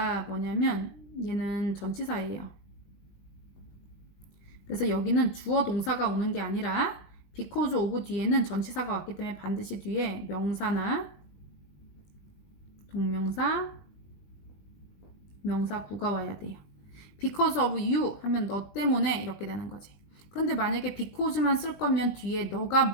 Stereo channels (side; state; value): right; late; 20 ms